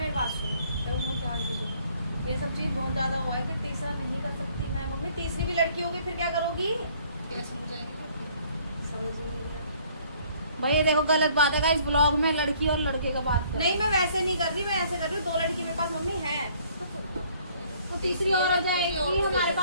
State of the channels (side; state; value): both; inverted; correlation -0.60